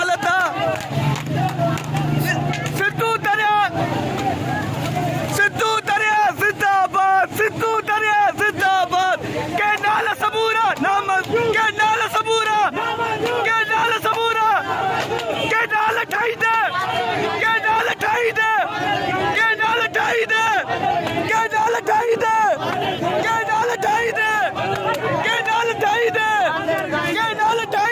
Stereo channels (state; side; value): identical; both; correlation 1.00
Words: आहे। सिंधू दरिया, सिंधू दरिया जिंदाबाद, सिंधू दरिया जिंदाबाद। के नाल सबूरा नामंज़ूर, के नाल सबूरा, के नाल सबूरा, के नाल ठाई दे, के नाल ठाई दे, के नाल ठाई दे, के नाल ठाई दे, के नाल ठाई दे, के नाल ठाई दे, के नाल